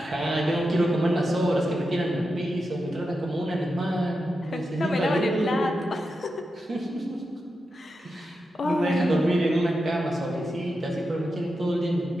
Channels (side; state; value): both; normal; correlation 0.89